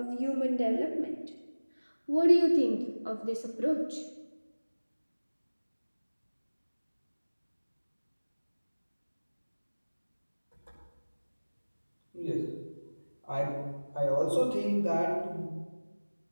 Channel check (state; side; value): inverted; both; correlation -1.00